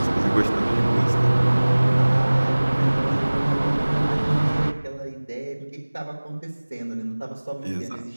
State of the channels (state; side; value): inverted; both; correlation -1.00